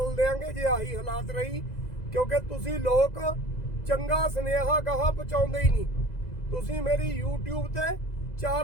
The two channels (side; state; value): right; late; 2.0 ms